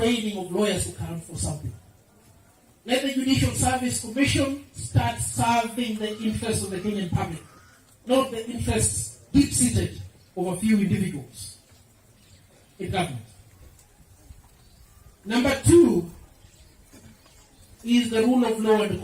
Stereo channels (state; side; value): identical; both; correlation 1.00